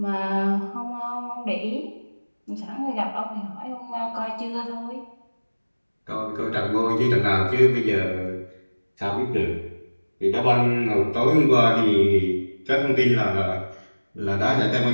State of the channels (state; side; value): inverted; both; correlation -1.00